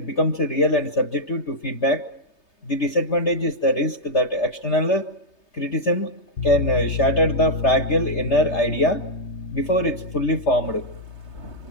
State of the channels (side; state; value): right; late; 3.3 ms